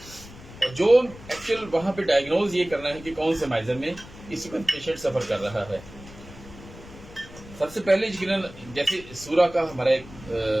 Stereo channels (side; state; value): left; noise; rumble, 17 dB below the sound